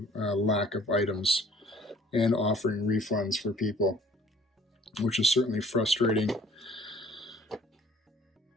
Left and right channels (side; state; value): both; normal; correlation 0.56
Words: lack of items and offering refunds for people, which is certainly frustrating.